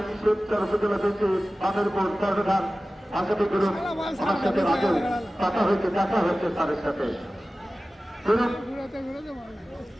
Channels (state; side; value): normal; both; correlation 0.96